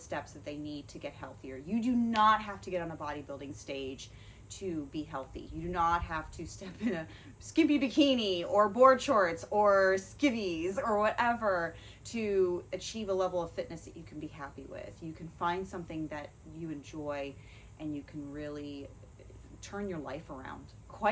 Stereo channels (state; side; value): identical; both; correlation 1.00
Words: that they need to get healthier. You do not have to get on a bodybuilding stage to be healthy. You do not have to step in a skimpy bikini or board shorts or skivvies or whatever to achieve a level of fitness that you can be happy with. You can find something that you enjoy and you can really turn your life around,